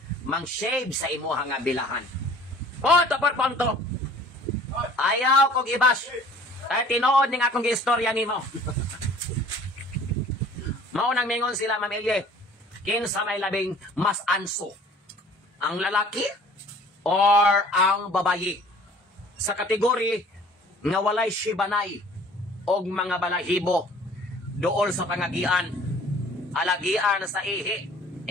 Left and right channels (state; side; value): normal; both; correlation 0.51